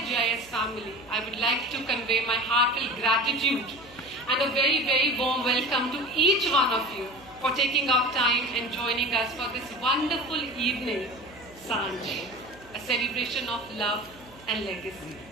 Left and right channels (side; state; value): right; noise; hum, 23 dB below the sound